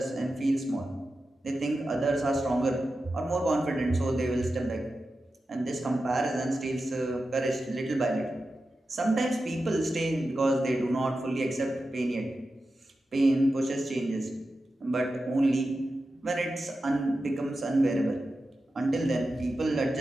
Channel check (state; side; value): normal; both; correlation 0.91